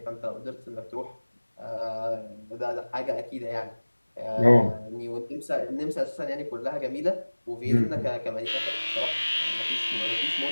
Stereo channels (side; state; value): both; inverted; correlation -1.00